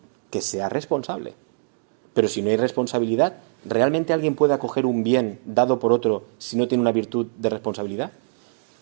que sea responsable. Pero si no hay responsabilidad, ¿realmente alguien puede acoger un bien dado por otro si no tiene una virtud de responsabilidad?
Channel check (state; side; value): silent; left; digital silence